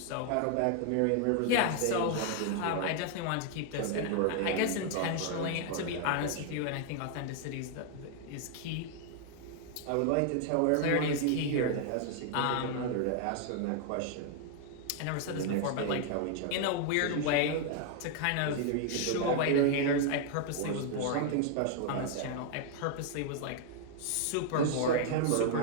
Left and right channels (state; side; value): different; both; correlation 0.00